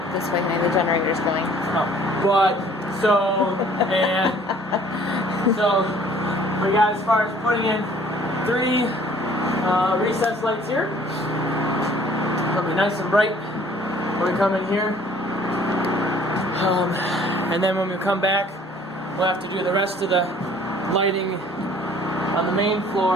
this way, honey. The generator's going. So we got as far as putting in 3 recessed lights here. It'll be nice and bright when we come in here. And then when we come back, we'll have to do the rest of the lighting on the main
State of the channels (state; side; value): normal; both; correlation 0.55